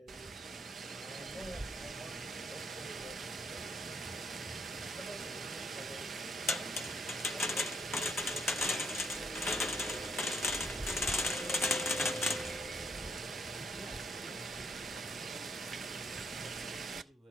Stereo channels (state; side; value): normal; both; correlation 0.72